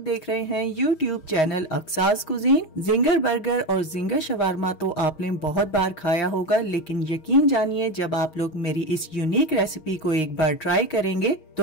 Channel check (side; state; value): right; late; 6.3 ms